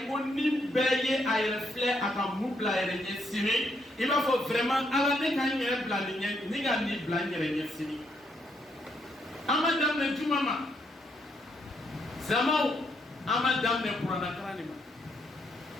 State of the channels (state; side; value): normal; both; correlation 0.75